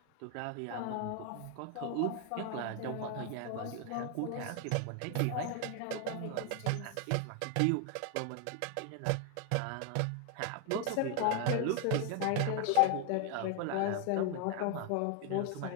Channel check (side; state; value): both; different; correlation 0.01